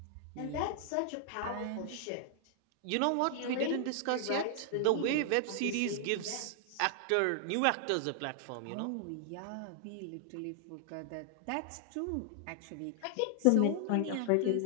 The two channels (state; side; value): different; both; correlation 0.00